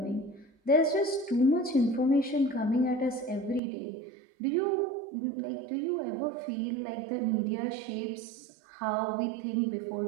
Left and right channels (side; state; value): left; drops out; at 3.6 s